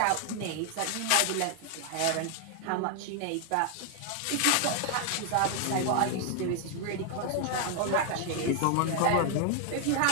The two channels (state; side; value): different; both; correlation 0.00